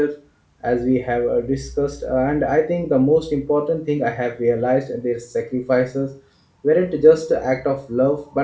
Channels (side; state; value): both; identical; correlation 1.00